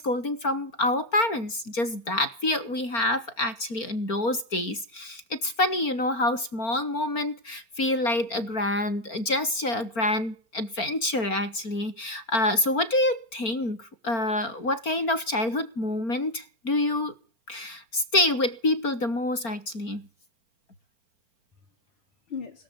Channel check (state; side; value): late; right; 4.4 ms